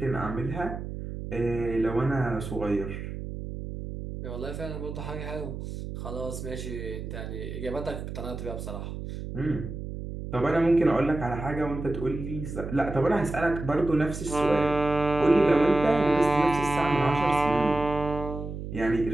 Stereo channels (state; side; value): noise; right; hum, 8 dB below the sound